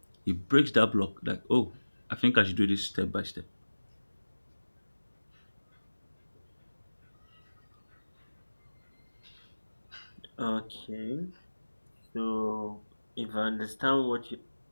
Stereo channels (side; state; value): both; inverted; correlation -1.00